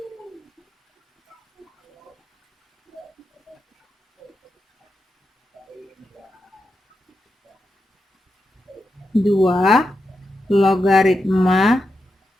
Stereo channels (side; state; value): both; normal; correlation 0.87